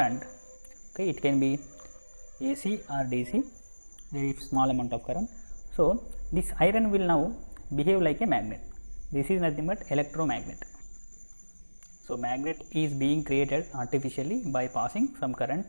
okay, it can be AC or DC, very small amount of current. So, this iron will now behave like a magnet. This is nothing but electromagnet. So, magnet is being created artificially by passing some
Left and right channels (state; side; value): inverted; both; correlation -1.00